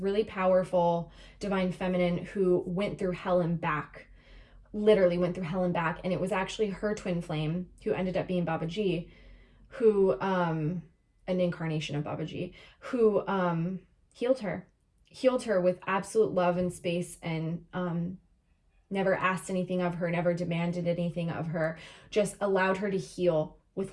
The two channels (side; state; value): both; identical; correlation 1.00